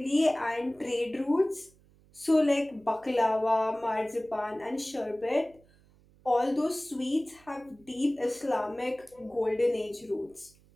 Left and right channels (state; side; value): noise; right; hum, 29 dB below the sound